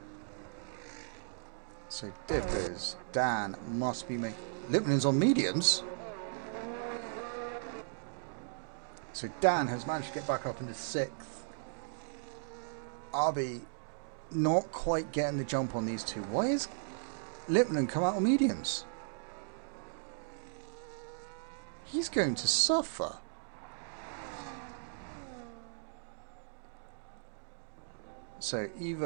So Dippers, Dan must be making... Lipman's on mediums. So Dan has managed to get back up into 6th. Arby not quite getting the jump on these two. Why is Lipman come out on mediums? He's going to suffer. So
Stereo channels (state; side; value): silent; left; digital silence